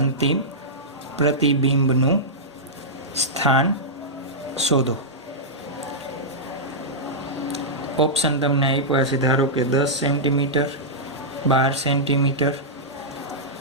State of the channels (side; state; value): both; normal; correlation -0.11